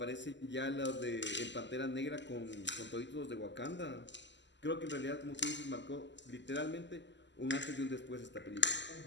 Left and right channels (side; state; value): right; late; 0.53 ms